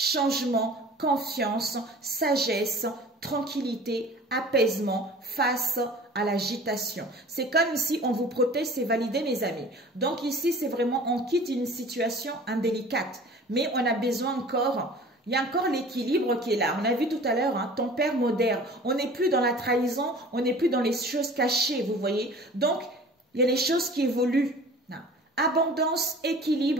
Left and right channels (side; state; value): both; normal; correlation 0.44